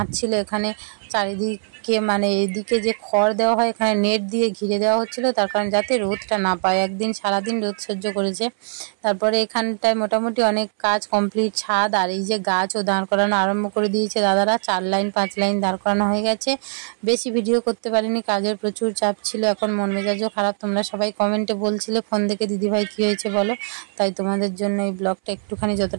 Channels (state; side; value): silent; left; 63 dB below the other